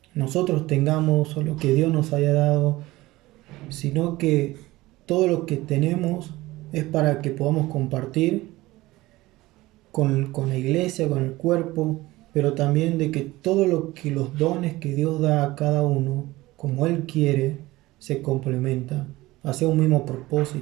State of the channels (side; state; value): left; quieter; 18.7 dB